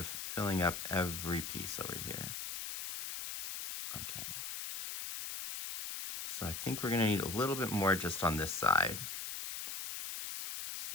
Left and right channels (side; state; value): left; noise; hiss, 5 dB below the sound